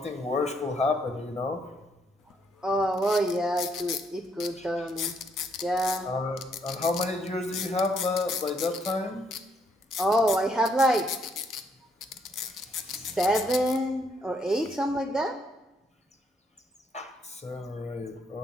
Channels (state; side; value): normal; both; correlation 0.71